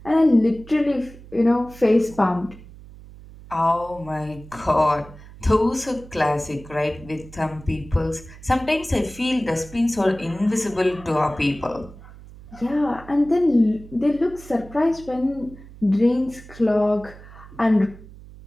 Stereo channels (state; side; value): noise; right; hum, 19 dB below the sound